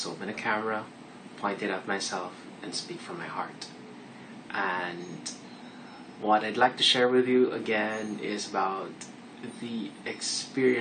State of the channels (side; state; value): both; identical; correlation 1.00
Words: open a camera, point it at myself, and speak from my heart. And what I'd like to share with you again is about the